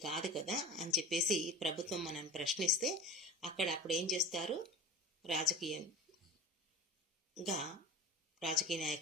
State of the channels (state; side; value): normal; both; correlation 0.36